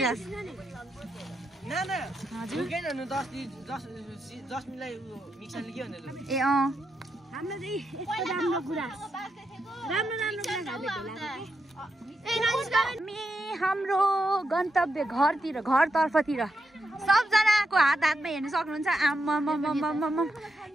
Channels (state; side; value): normal; both; correlation 0.84